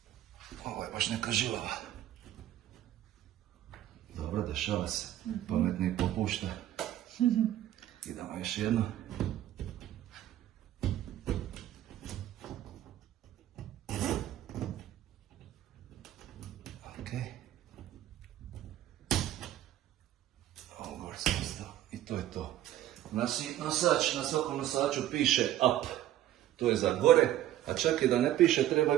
Ovo je baš neka žilava. Dobro, dešava se, pametni popušta. Idemo još jedno. I to je to. Nosač, na svakom nosaču piše up, to je za gore, a čak i da ne piše treba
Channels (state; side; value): quieter; left; 12.9 dB